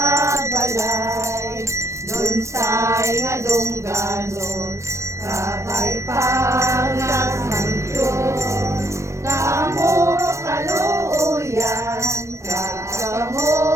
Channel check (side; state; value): left; late; 0.14 ms